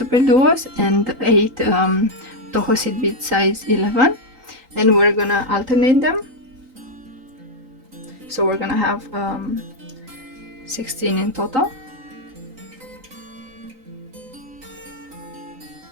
and 8 Toho seed bead size 11, and we're gonna alternate them. So we're gonna have 16 in total.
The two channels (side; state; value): left; late; 3.9 ms